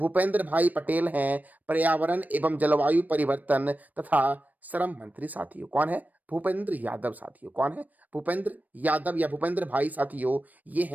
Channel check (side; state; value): left; late; 0.081 ms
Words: भाई पटेल हैं पर्यावरण एवं जलवायु परिवर्तन तथा श्रम मंत्री साथियों। कौन है? भूपेंद्र यादव साथियों। कौन है? भूपेंद्र यादव या भूपेंद्र भाई साथियों, ये